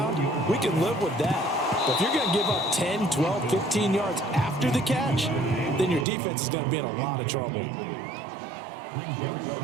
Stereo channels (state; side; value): drops out; left; at 6.1 s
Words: we can live with that. But if you're going to give up 10, 12, 15 yards after the catch, then your defense is going to be in a lot of trouble.